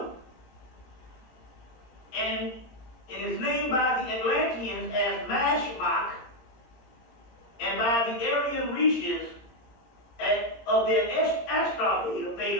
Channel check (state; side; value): late; right; 17 ms